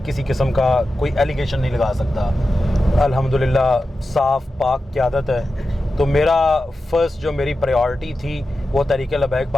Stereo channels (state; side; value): normal; both; correlation 0.92